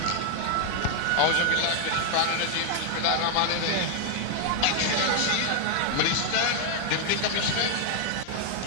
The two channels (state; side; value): different; both; correlation 0.00